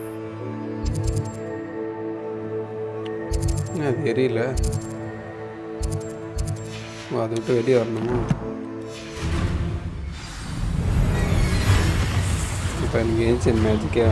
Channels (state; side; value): identical; both; correlation 1.00